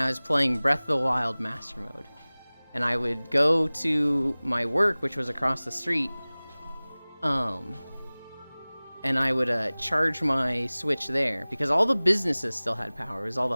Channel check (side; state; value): both; inverted; correlation -1.00